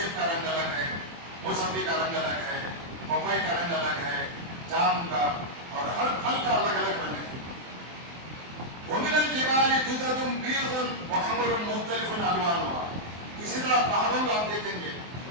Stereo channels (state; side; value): late; left; 24 ms